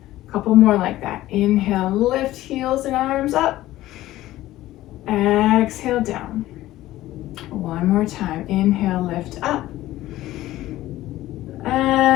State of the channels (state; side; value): quieter; right; 15.5 dB